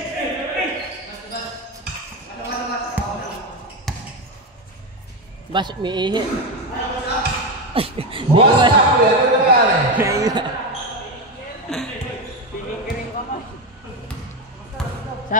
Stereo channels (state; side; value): normal; both; correlation 0.13